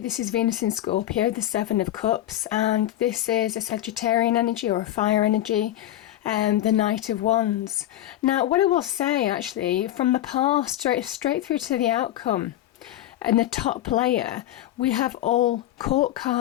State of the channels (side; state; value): right; quieter; 13.4 dB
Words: is Venus in Scorpio, the 7 of Cups, and this is a Sagittarian energy or a fire energy, the Knight of Wands. Now, what I will say actually, from the past straight through to the outcome, and the top layer, we have all court